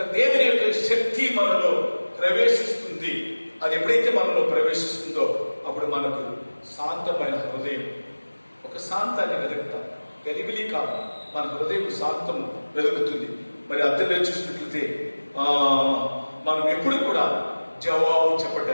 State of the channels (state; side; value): inverted; both; correlation -1.00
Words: దేవుని యొక్క శక్తి మనలో ప్రవేశిస్తుంది. అది ఎప్పుడైతే మనలో ప్రవేశిస్తుందో అప్పుడు మనకు శాంతమైన హృదయం, ఒక శాంతాన్ని వెతుకుతాం. గలిబిలి కాదు, మన హృదయం శాంతము వెతుకుతుంది. మరి అందులో చూసినట్లయితే మనం ఎప్పుడు కూడా జవాబు